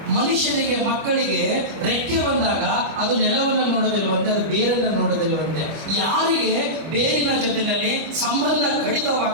ಮನುಷ್ಯನಿಗೆ, ಮಕ್ಕಳಿಗೆ ರೆಕ್ಕೆ ಬಂದಾಗ ಅದು ನೆಲವನ್ನು ನೋಡೋದಿಲ್ವಂತೆ, ಅದು ಬೇರನ್ನು ನೋಡೋದಿಲ್ವಂತೆ. ಯಾರಿಗೆ ಬೇರಿನ ಜೊತೆಯಲ್ಲಿ ಸಂಬಂಧ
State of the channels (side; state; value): left; late; 25 ms